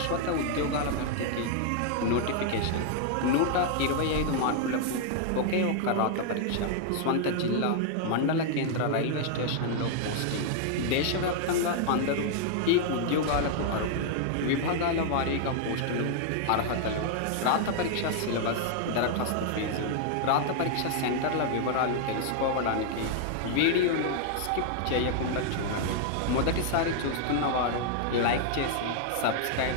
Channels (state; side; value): different; both; correlation 0.00